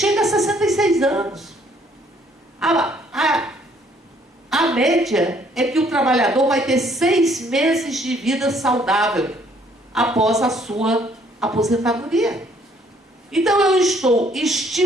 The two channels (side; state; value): both; normal; correlation 0.63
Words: a 66 anos. A média é que o trabalhador vai ter 6 meses de vida saudável após a sua aposentadoria. Então eu estou